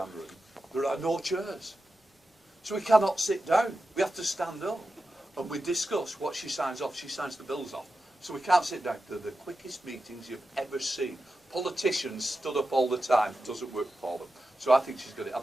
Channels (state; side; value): normal; both; correlation 0.91